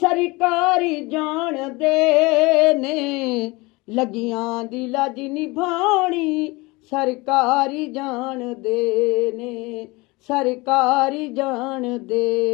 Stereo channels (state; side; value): quieter; right; 23.9 dB